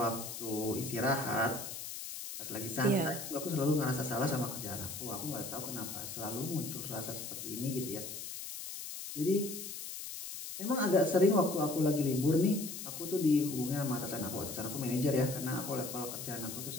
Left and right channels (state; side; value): noise; left; hiss, 8 dB below the sound